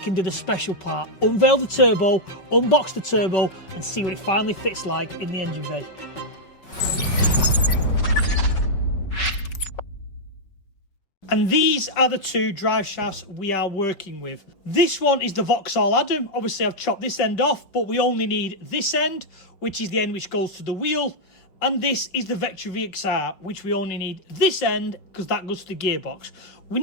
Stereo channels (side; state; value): right; late; 5.3 ms